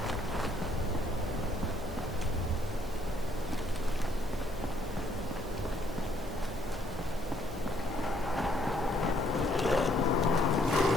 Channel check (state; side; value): normal; both; correlation 0.68